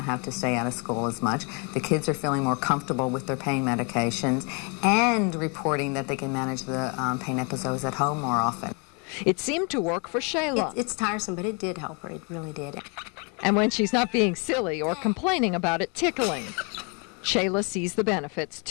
have to stay out of school as much. The kids are feeling more comfortable with their pain medications and reporting that they can manage the pain episodes at home more often. It seemed to work for Shayla. It's tiresome, but it did help her. It really did. And when she's not being silly or complaining about it tickling, Shayla sees the benefits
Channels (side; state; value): right; quieter; 33.1 dB